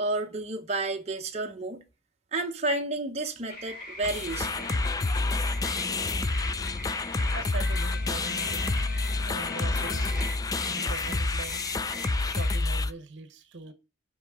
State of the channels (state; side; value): normal; both; correlation 0.40